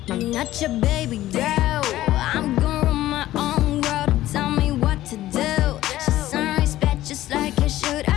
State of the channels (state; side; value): quieter; right; 14.8 dB